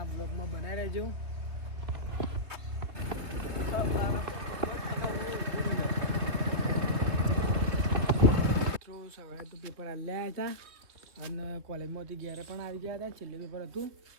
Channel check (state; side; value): late; left; 3.3 ms